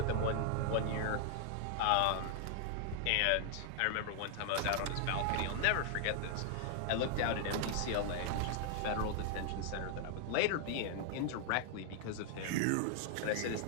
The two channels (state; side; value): different; both; correlation 0.00